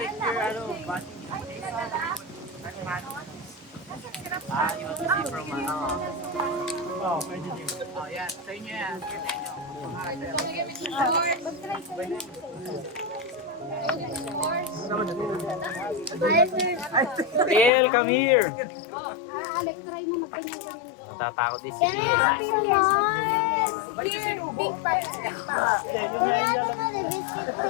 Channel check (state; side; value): drops out; right; at 17.7 s